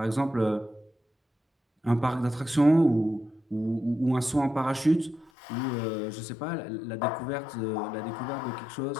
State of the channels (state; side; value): drops out; right; at 5.3 s